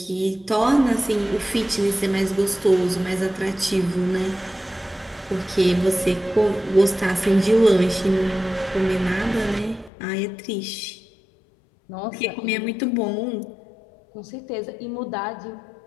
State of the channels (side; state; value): right; drops out; at 9.9 s